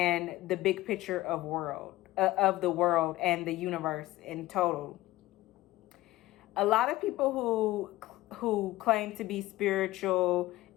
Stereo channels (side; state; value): right; quieter; 17.4 dB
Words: the big picture of the world and the universe in total. A lot of people who claim to be spiritual